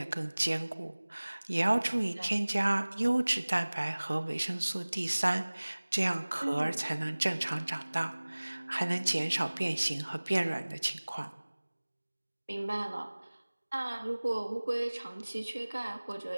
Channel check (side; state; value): both; inverted; correlation -1.00